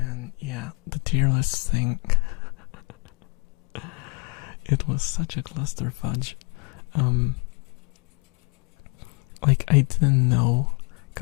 yeah, the tier list thing. It was such a cluster fudge. Like I didn't know,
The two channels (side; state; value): right; quieter; 34.2 dB